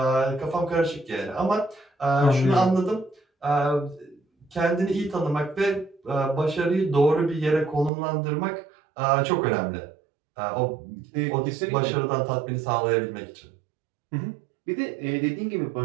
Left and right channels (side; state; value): left; drops out; at 7.9 s